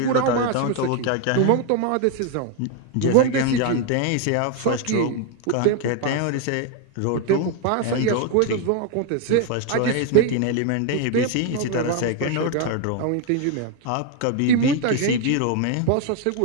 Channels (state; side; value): different; both; correlation 0.01